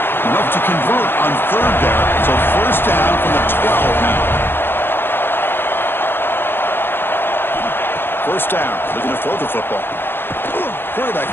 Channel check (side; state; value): right; late; 0.10 ms